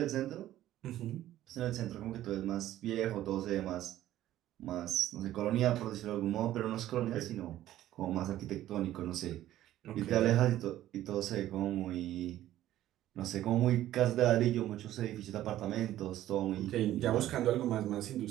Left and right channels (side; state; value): left; quieter; 13.5 dB